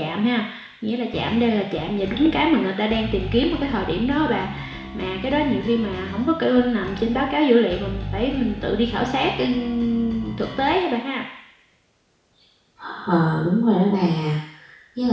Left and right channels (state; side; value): identical; both; correlation 1.00